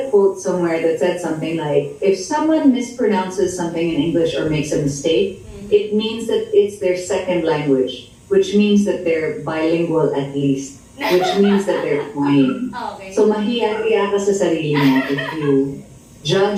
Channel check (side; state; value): both; identical; correlation 1.00